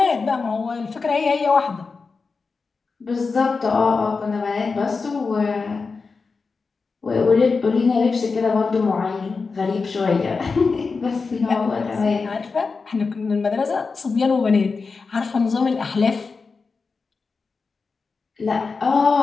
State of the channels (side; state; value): right; quieter; 4.6 dB